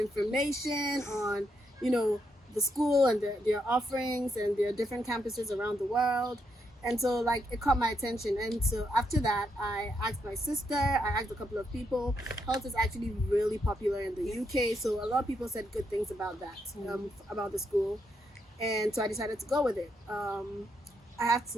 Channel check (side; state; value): both; normal; correlation 0.79